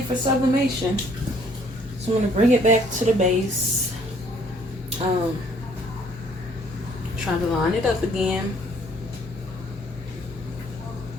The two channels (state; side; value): normal; both; correlation 0.62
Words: for sublimation. So I'm gonna bring it back to the base. Try to line it up again.